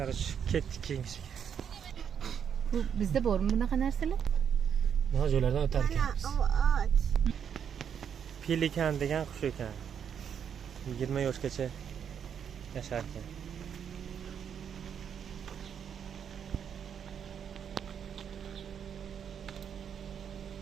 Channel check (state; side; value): quieter; left; 7.9 dB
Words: ketdik keyinchisiga. Bu bizda bormi bunaqa narsalar? Mana joylardan o'tar ekanmiz. Pelikan degan qush ekan. 20 yoshgacha yashar ekan.